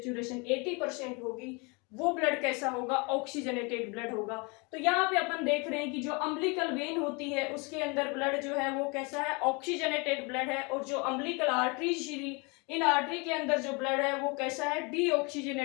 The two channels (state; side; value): quieter; right; 29.9 dB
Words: 80% होगी वो ब्लड कैसा होगा, ऑक्सीजनेटेड ब्लड होगा। तो यहाँ पे अपन देख रहे हैं कि जो अम्बिलिकल वेन होती है उसके अंदर ब्लड जो है वो कैसा है, ऑक्सीजनेटेड ब्लड है। और जो अम्बिलिकल आर्टरीज, इन आर्टरी के अंदर जो ब्लड है वो कैसा है,